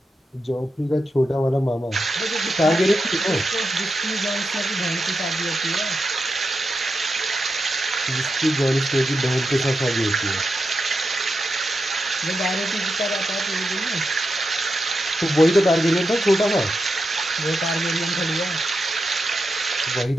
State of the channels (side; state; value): both; normal; correlation 0.87